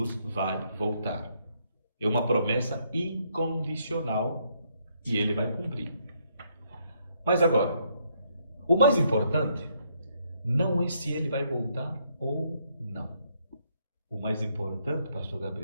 vai voltar. É uma promessa incondicional e ele vai cumprir. Mas agora, o mais importante não é se ele vai voltar ou não. O mais importante, pastor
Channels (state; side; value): inverted; both; correlation -0.72